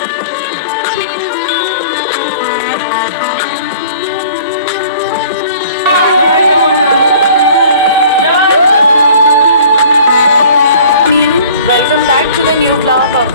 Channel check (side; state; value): both; inverted; correlation -0.50